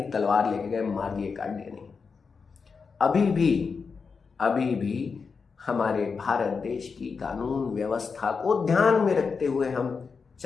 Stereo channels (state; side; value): quieter; right; 5.2 dB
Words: कि तलवार लेके गए, मार दिए, काट दिए, नहीं। अभी भी हमारे भारत देश की कानून व्यवस्था को ध्यान में रखते हुए हम